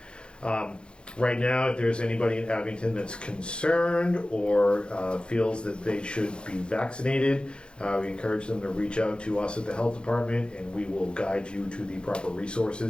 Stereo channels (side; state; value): right; late; 0.053 ms